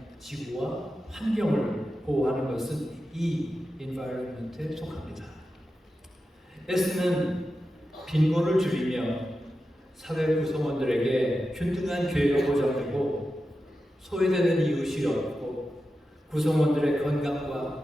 지구와 환경을 보호하는 것은 이 environment에 속합니다. S는 빈곤을 줄이며 사회 구성원들에게 균등한 기회가 보장되고 소외되는 이웃이 없고 구성원들의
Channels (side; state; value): both; normal; correlation 0.91